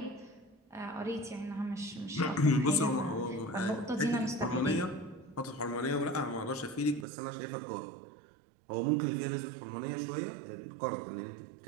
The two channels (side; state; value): left; drops out; at 7.1 s